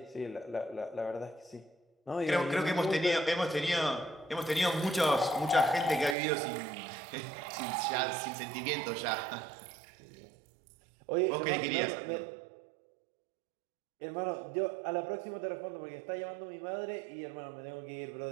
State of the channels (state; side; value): drops out; left; at 6.2 s